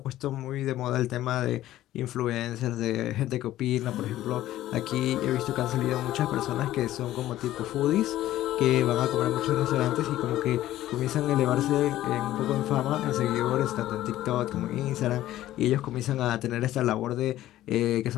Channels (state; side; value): quieter; right; 14.2 dB